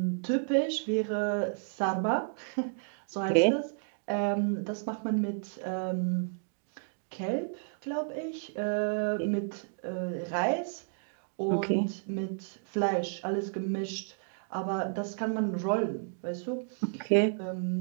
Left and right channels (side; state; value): left; silent; digital silence